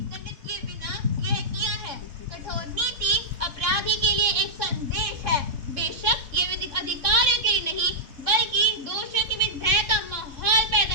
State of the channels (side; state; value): left; late; 3.5 ms